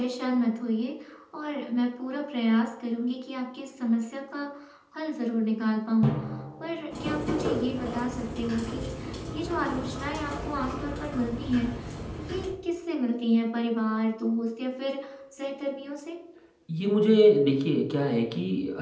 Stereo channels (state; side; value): identical; both; correlation 1.00